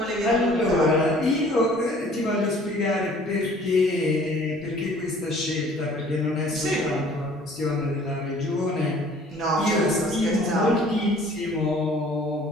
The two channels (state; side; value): normal; both; correlation 0.53